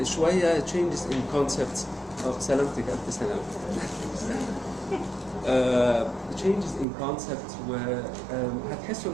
شويه changes in concepts. سلامتك الف سلامه. changes in concept وهتحسوا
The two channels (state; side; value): drops out; left; at 6.9 s